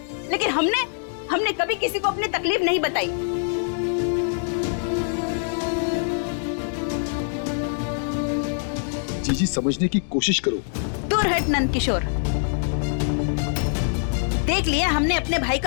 लेकिन हमने कभी किसी को अपनी तकलीफ नहीं बताई। जीजी समझने की कोशिश करो। दूर हट नंद किशोर, देख लिया हमने अपने भाई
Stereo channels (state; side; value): silent; right; digital silence